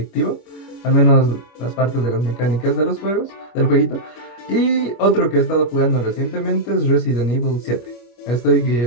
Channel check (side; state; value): right; late; 25 ms